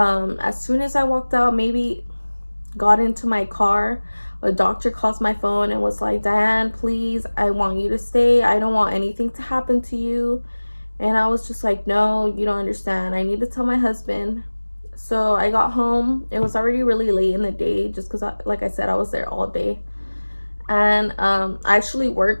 soon as I walked out, maybe got into my car, a doctor calls my phone and was like, Diane, please, I want you to stay. I don't want anything to happen to you. And I was just like, no, you don't understand. I need to tell my husband. So I got home. It was already really late in the day, just because, like I said, I was there all day. And I actually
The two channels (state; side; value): inverted; both; correlation -1.00